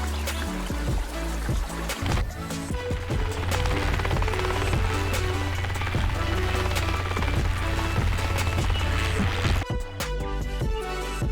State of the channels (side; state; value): both; identical; correlation 1.00